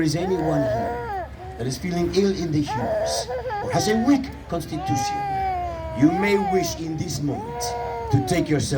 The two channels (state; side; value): identical; both; correlation 1.00